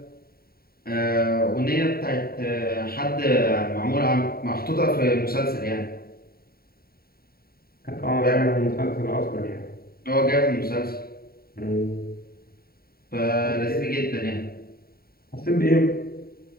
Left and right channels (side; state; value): right; late; 0.44 ms